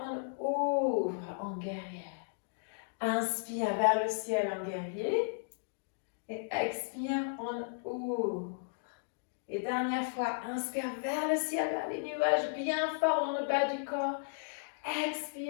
on ouvre en guerrière. Inspire vers le ciel en guerrier. Et expire, on ouvre. Et dernière fois, inspire vers le ciel, vers les nuages, bien fort dans le bas du corps.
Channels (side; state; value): right; silent; digital silence